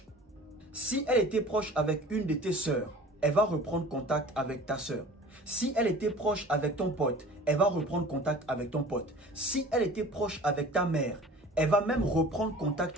Si elle était proche avec une de tes sœurs, elle va reprendre contact avec ta sœur. Si elle était proche avec ton pote, elle va reprendre contact avec ton pote. Si elle était proche avec ta mère, elle va même reprendre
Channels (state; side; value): normal; both; correlation 0.43